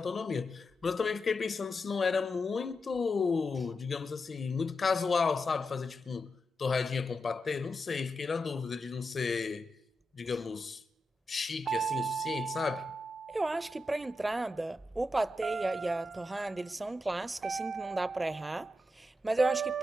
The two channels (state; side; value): normal; both; correlation 0.88